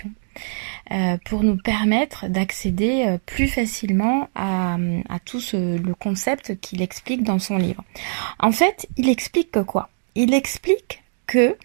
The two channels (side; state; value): left; silent; digital silence